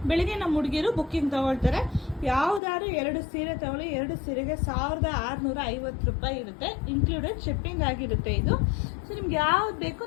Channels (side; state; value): right; drops out; at 2.6 s